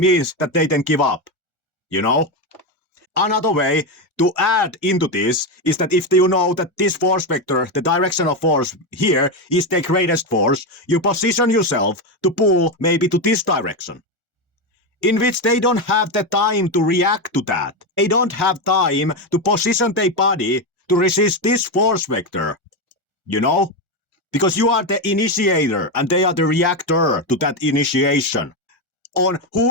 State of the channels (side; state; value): both; normal; correlation 0.11